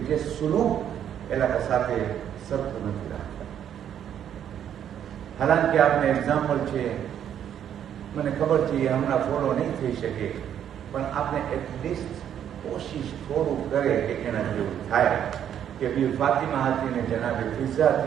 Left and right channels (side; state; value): left; quieter; 9.6 dB